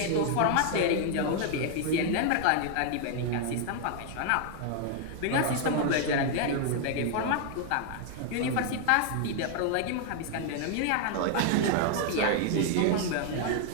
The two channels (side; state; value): both; different; correlation 0.00